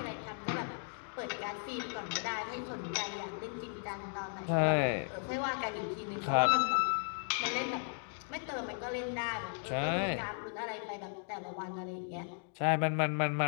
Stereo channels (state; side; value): silent; right; 54 dB below the other